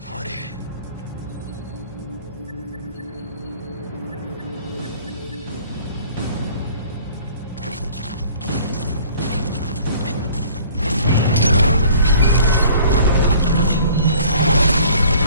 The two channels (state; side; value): inverted; both; correlation -0.52